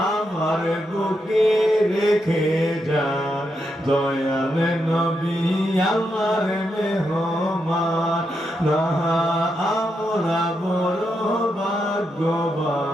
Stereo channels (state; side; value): normal; both; correlation 0.83